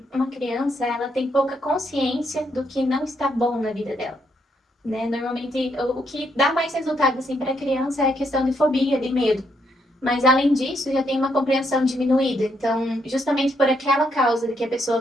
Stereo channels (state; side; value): normal; both; correlation 0.76